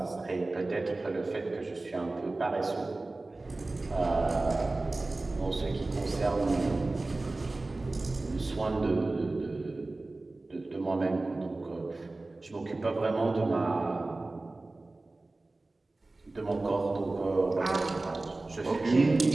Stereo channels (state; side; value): quieter; left; 3.1 dB